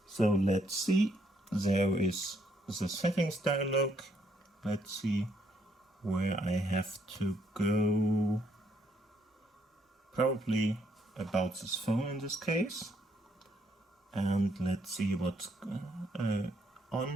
So let's see. There is the settings dialog. Let's see where I have to go. Probably about this phone in this case. And let's see what's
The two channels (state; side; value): normal; both; correlation 0.72